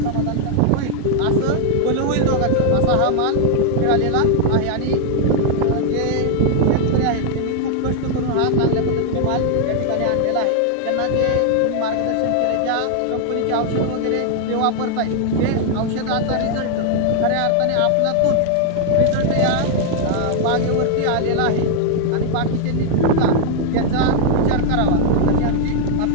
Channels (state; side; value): different; both; correlation 0.00